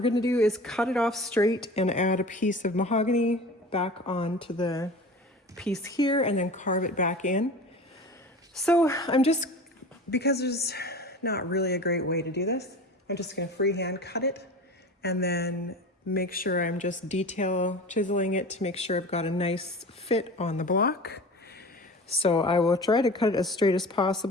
gonna do is cut it off straight and add a piece of mahogany back onto the piece here and then carve it back in. So because there's not really a great way to do this, I'm just gonna freehand cut it and then make sure I'm just detail chiseling it to make sure I've got a nice fit on the block. So I will try to cut it as straight as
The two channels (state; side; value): normal; both; correlation 0.36